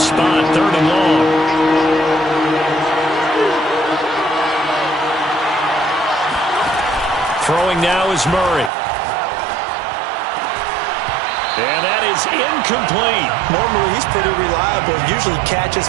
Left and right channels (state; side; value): drops out; left; at 8.7 s